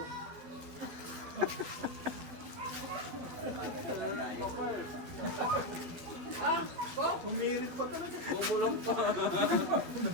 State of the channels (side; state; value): left; late; 12 ms